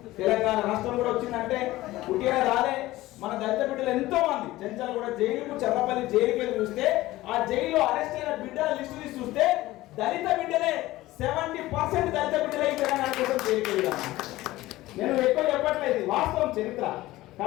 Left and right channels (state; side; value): quieter; right; 17.3 dB